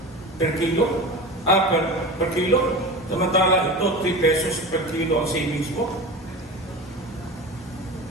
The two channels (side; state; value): both; normal; correlation 0.30